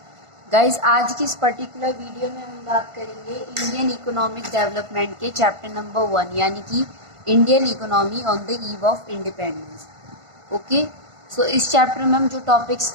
Guys, आज की इस पर्टिकुलर वीडियो में हम बात करेंगे इंडियन इकोनॉमिक डेवलपमेंट के चैप्टर नंबर 1 यानी कि Indian economy on the eve of independence. Okay, so इस चैप्टर में हम जो टॉपिक्स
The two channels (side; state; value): left; late; 1.5 ms